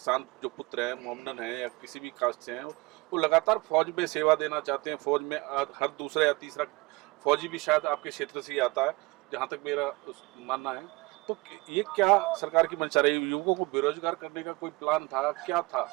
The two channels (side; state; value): left; quieter; 24.0 dB